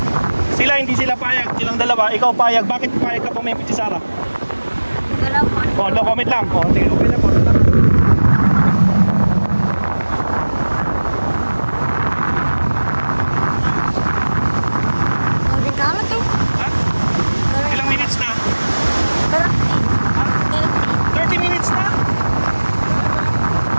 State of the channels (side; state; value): both; inverted; correlation -1.00